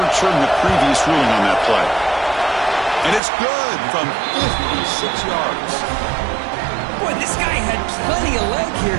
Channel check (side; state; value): left; drops out; at 3.2 s